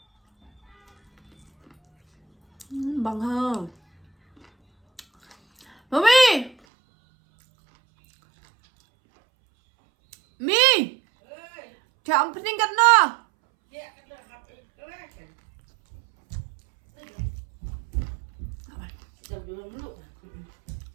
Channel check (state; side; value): drops out; left; at 6.6 s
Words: Bang ha. Mommy! Mi! Theo ông Pinh gần nó!